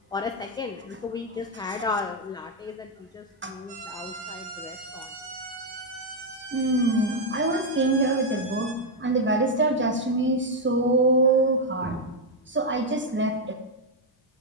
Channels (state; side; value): normal; both; correlation 0.01